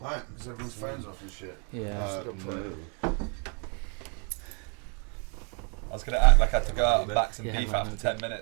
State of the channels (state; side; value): quieter; left; 37.8 dB